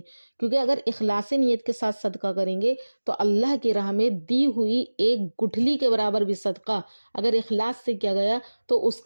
کیونکہ اگر اخلاص نیت کے ساتھ صدقہ کریں گے تو اللہ کی راہ میں دی ہوئی ایک گٹھلی کے برابر بھی صدقہ اگر اخلاص سے کیا گیا تو اس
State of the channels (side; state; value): both; inverted; correlation -1.00